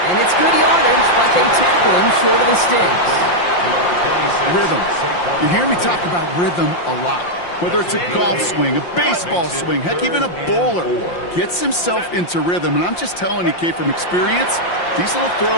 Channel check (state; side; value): late; right; 5.7 ms